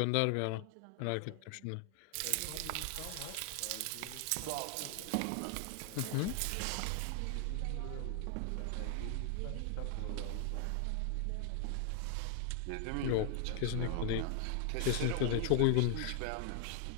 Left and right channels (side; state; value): both; different; correlation 0.00